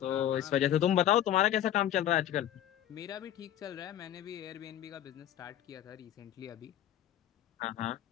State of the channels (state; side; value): quieter; right; 11.7 dB